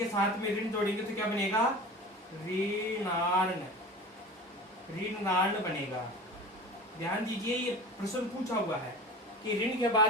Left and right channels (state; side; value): normal; both; correlation 0.35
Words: साथ में ऋण जोड़ेंगे तो क्या बनेगा, ऋणार्ण, ऋणार्ण बनेगा। ध्यान दीजिए, ये प्रश्न पूछा हुआ है कि ऋण के